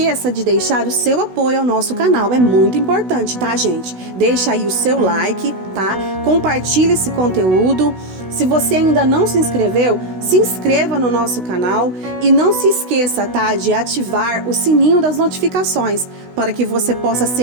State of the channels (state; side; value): late; left; 16 ms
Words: de deixar o seu apoio ao nosso canal, é muito importante, tá, gente? Deixa aí o seu like, tá? Compartilhe esse conteúdo. Se você ainda não se inscreveu, se inscreva no nosso canal e não se esqueça, tá, de ativar o sininho das notificações para que você possa